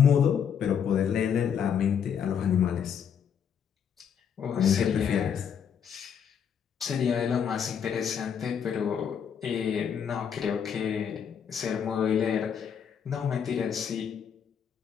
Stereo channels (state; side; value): quieter; right; 7.8 dB